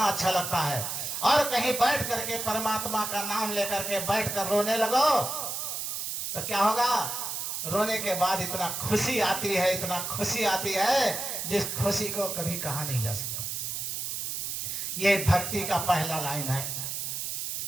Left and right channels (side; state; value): right; noise; hiss, 3 dB below the sound